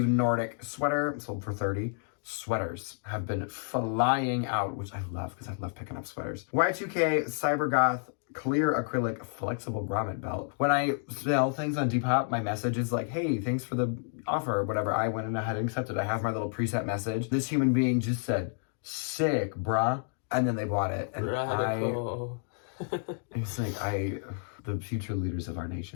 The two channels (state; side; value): silent; right; 58 dB below the other